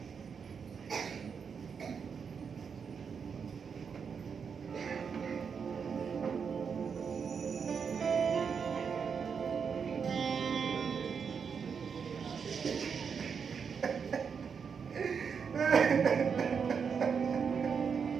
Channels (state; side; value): quieter; left; 6.3 dB